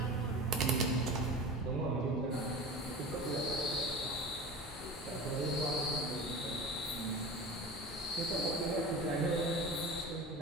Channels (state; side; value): normal; both; correlation 0.33